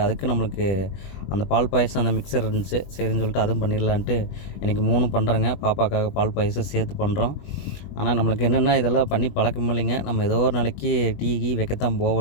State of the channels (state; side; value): late; right; 21 ms